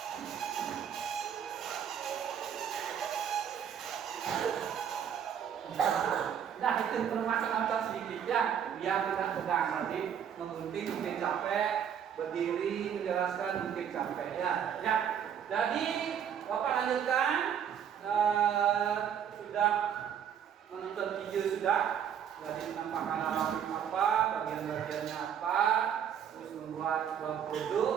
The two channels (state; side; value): quieter; left; 8.6 dB